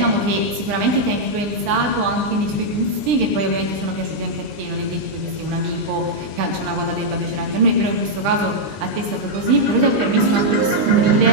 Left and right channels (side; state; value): left; late; 20 ms